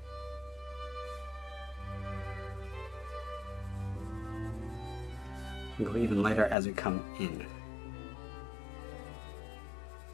And go even lighter as we come in.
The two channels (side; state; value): right; drops out; at 6.6 s